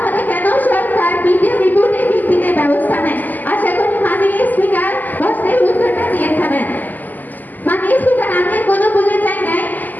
কেন সরকার মিডিয়া রিপোর্টের ভিত্তিতে ব্যবস্থা নেয়? আশা করি মাননীয় স্পিকার প্রশ্নের উত্তরটা দিয়ে থাকবেন। মাননীয় স্পিকার, আমি কোনো বলে চাই নাই,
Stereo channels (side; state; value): right; late; 0.084 ms